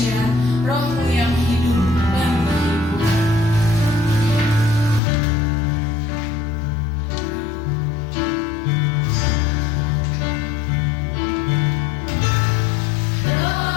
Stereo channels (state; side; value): drops out; right; at 5.0 s